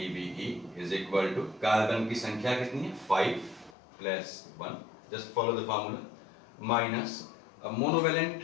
is equal to carbon की संख्या कितनी है 5 plus 1, just follow the formula, minus अब मोनोवैलेंट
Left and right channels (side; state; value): right; drops out; at 3.8 s